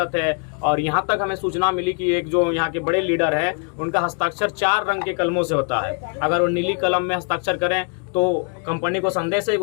है। और यहाँ तक हमें सूचना मिली कि एक जो यहाँ के बड़े लीडर है उनका हस्ताक्षर 4 रंग के कलमों से होता है। अगर वो नीली कलम में हस्ताक्षर करें तो कंपनी को संदेश है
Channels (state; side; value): quieter; right; 37.4 dB